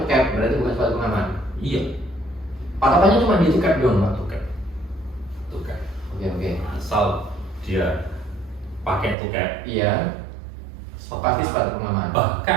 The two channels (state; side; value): drops out; left; at 9.2 s